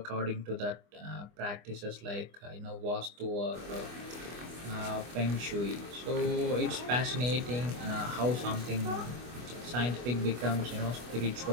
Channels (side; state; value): left; late; 25 ms